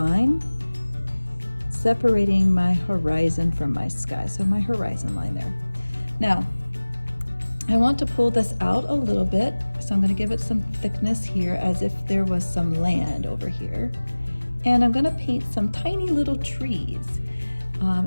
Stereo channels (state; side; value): inverted; both; correlation -1.00